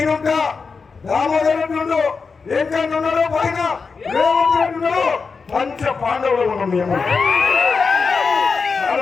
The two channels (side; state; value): right; quieter; 4.9 dB